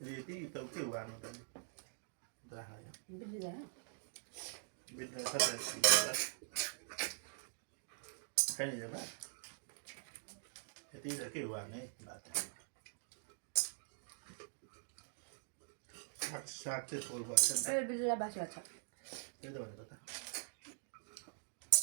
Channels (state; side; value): silent; left; digital silence